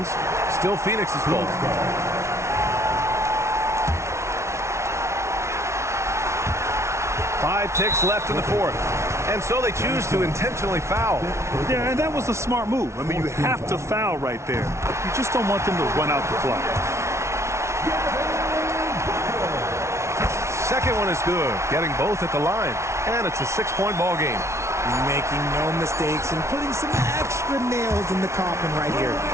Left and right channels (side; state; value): left; late; 0.13 ms